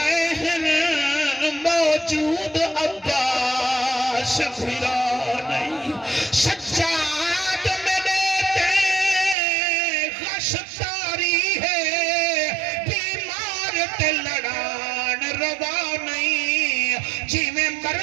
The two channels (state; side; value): drops out; left; at 9.3 s